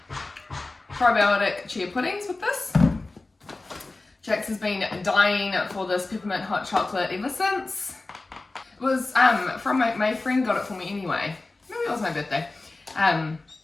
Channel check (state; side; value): quieter; right; 3.2 dB